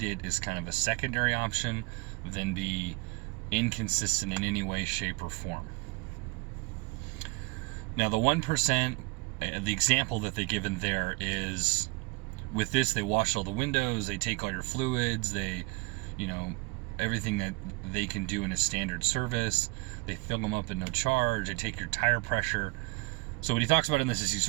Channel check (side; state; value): left; quieter; 26.4 dB